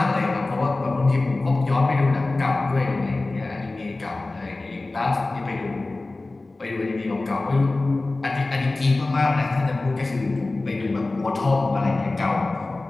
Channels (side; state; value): right; quieter; 3.1 dB